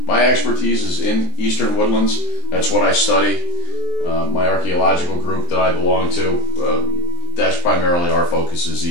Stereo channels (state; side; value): late; right; 23 ms